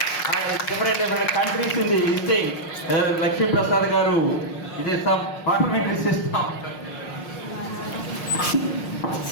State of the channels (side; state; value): right; late; 5.5 ms